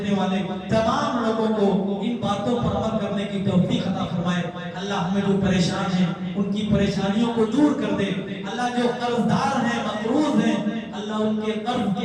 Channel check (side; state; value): both; identical; correlation 1.00